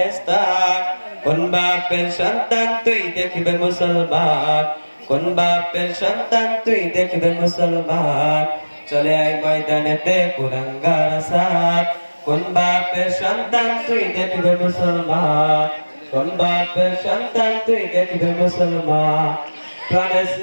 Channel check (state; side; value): inverted; both; correlation -1.00